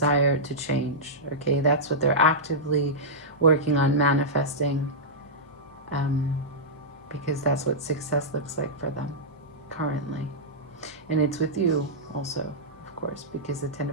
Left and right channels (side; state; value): both; normal; correlation -0.12